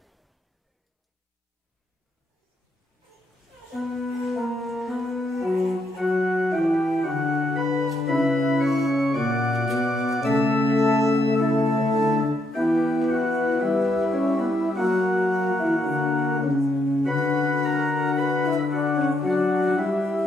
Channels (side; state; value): both; normal; correlation 0.78